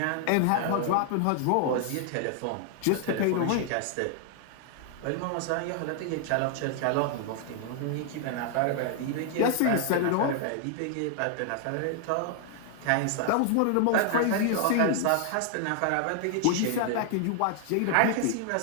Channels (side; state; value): both; different; correlation 0.00